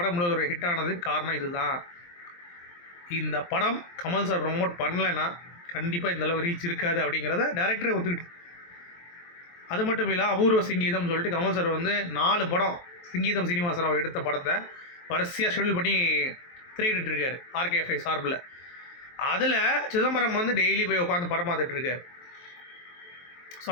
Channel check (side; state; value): right; late; 23 ms